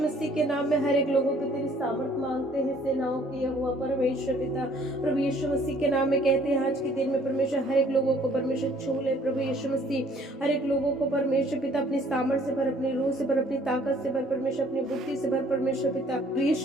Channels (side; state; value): both; normal; correlation 0.59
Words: मसीह के नाम में हर एक लोगों को तेरी सामर्थ मांगते हैं, सेनाओं की यहोवा परमेश्वर पिता। प्रभु यीशु मसीह के नाम में कहते हैं आज के दिन में परमेश्वर हर एक लोगों को परमेश्वर छू ले। प्रभु यीशु मसीह हर एक लोगों को परमेश्वर पिता अपनी सामर्थ से भर, अपनी रूह से भर, अपनी ताकत से भर परमेश्वर, अपनी बुद्धि से भर परमेश्वर पिता। प्रभु